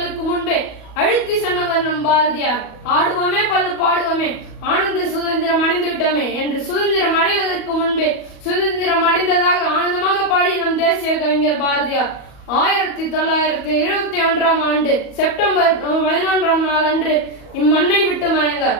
முன்பே அழுத்தி சொன்னவர் நம் பாரதியார். ஆடுவோமே பல்லு பாடுவோமே, ஆனந்த சுதந்திரம் அடைந்து விட்டோமே என்று சுதந்திரம் அடைவதற்கு முன்பே சுதந்திரம் அடைந்ததாக ஆனந்தமாக பாடிய நம் தேசிய கவிஞர் பாரதியார் 1921 ஆண்டு செப்டம்பர் 11 நாள் அன்று இம்மண்ணை விட்டு மறைந்தார்.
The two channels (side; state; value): right; late; 37 ms